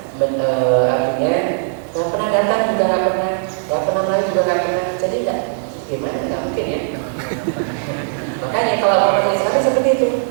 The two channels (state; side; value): silent; left; digital silence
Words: artinya nggak pernah datang juga nggak pernah melayu juga nggak pernah. Jadi gimana? Nggak mungkin ya. Makanya kalau orang Islam seperti itu,